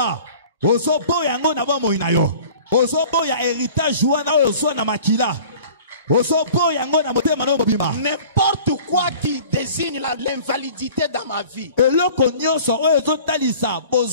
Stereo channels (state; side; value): inverted; both; correlation -0.46